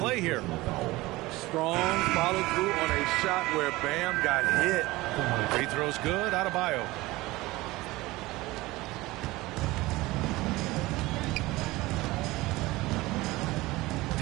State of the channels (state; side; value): quieter; left; 19.8 dB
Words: here. Strong follow through on a shot where Bam got hit. Free throw's good, Adebayo.